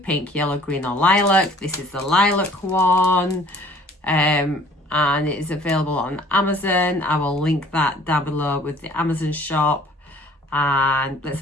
yellow, green, or lilac. This is the lilac one, and it is available on Amazon. I will link that down below with the Amazon shop. And let's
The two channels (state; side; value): normal; both; correlation 0.54